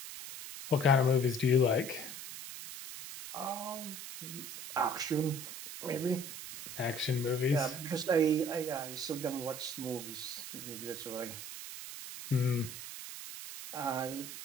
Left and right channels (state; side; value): noise; right; hiss, 10 dB below the sound